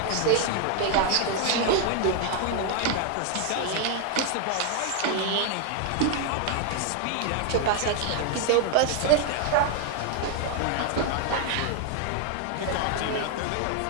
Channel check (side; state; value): both; different; correlation 0.00